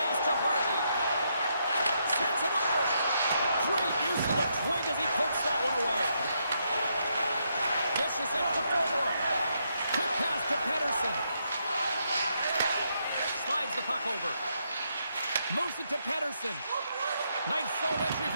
to Hartley. Sends it over. Great use of the twig as he pokes that one away. Dishes it to forward. Quick pass to Pettersson. Slides the puck over. Moves it to Pettersson. Nice zone entry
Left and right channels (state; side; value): inverted; both; correlation -0.78